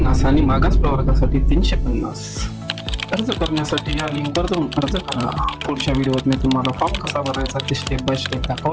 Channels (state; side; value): identical; both; correlation 1.00